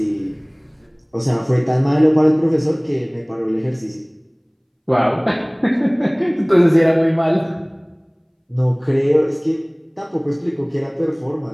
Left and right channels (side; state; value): both; identical; correlation 1.00